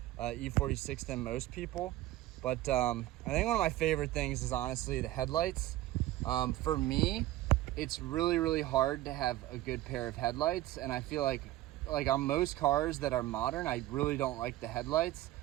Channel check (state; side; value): quieter; left; 15.7 dB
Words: E46 than most people. But I think one of my favorite things is honestly the headlights. For me, it's really, really hard to have a good pair of headlights, and I feel like on most cars that are modern, I really don't like the headlights.